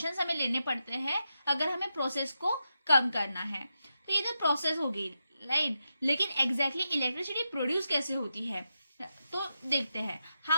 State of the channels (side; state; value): both; inverted; correlation -0.87